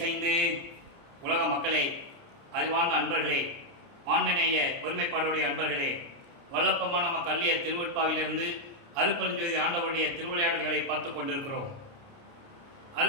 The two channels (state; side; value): late; left; 29 ms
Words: உலக மக்களே, அறிவார்ந்த அன்பர்களே, ஆண்மநேய ஒருமைப்பாடுடைய அன்பர்களே, வல்லப்பமான நம்ம கல்லிய திருவட்பாவிலிருந்து அருட்பெருஞ்சோதி ஆண்டவருடைய திருவிளையாடல்களை பார்த்து கொண்டிருக்கிறோம்.